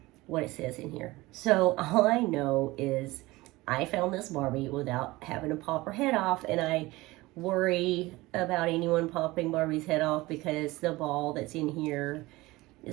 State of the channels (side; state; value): left; quieter; 20.3 dB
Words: what it says in here. So all I know is I found this Barbie without having to pop her head off, and I worry about anyone popping Barbie's head off because the ball that's in here